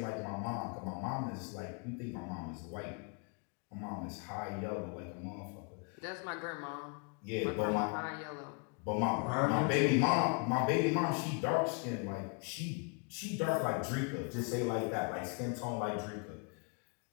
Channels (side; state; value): right; quieter; 35.3 dB